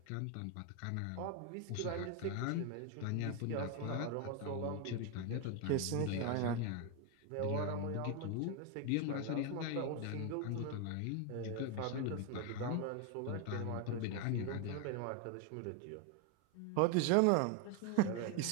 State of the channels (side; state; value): both; different; correlation 0.01